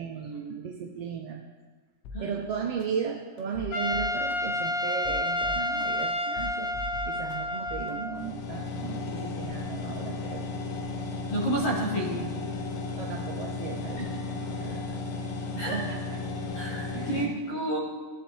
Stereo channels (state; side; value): late; right; 17 ms